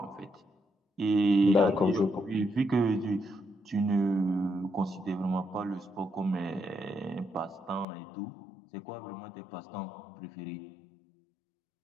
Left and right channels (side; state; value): right; drops out; at 7.9 s